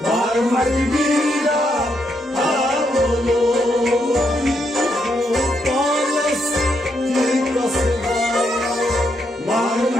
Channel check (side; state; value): both; normal; correlation 0.78